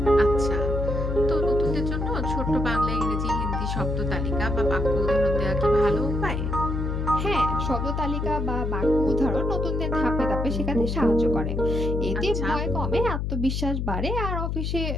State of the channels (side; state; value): left; noise; hum, 1 dB below the sound